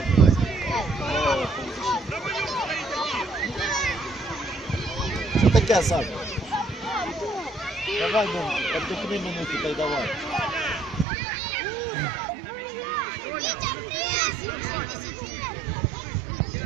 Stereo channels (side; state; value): left; drops out; at 11.1 s